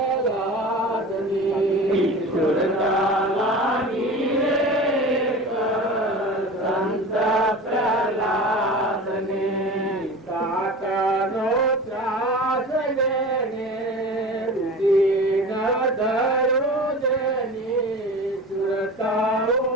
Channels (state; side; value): normal; both; correlation 0.34